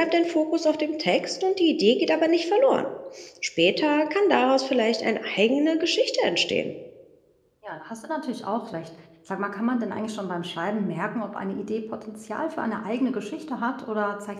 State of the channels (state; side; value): identical; both; correlation 1.00